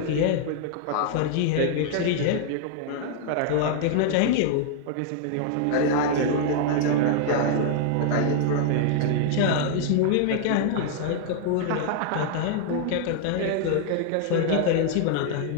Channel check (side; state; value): both; different; correlation 0.00